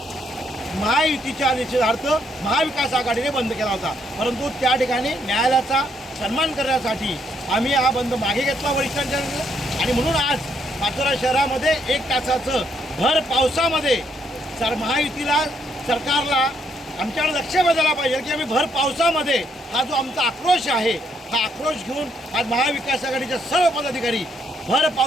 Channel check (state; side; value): normal; both; correlation 0.73